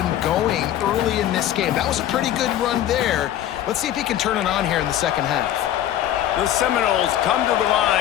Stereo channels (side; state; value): right; quieter; 11.9 dB